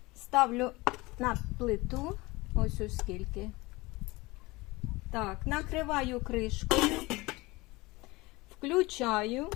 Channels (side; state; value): right; quieter; 22.2 dB